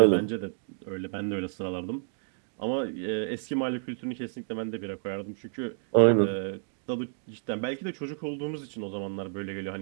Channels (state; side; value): silent; left; digital silence